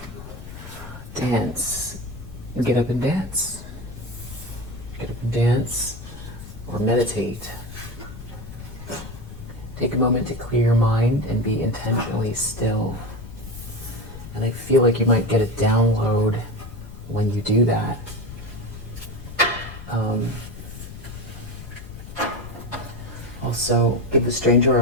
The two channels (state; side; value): noise; left; rumble, 13 dB below the sound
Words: Dance. Get up and dance. Get up and dance or meditate. Take a moment to clear your mind and be intentionally still. And I feel like you might get a download when you do that. Also, give a stranger